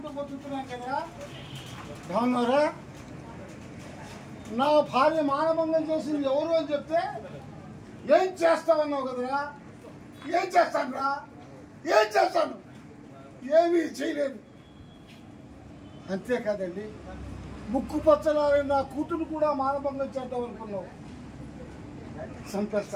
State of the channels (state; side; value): identical; both; correlation 1.00